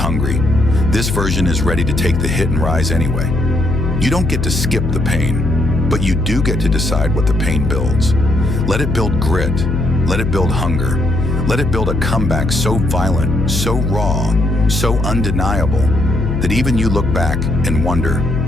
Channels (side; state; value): left; noise; hum, 2 dB below the sound